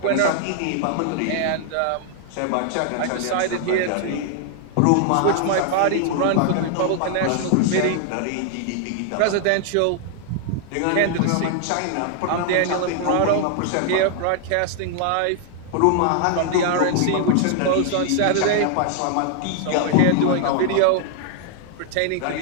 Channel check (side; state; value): both; different; correlation 0.00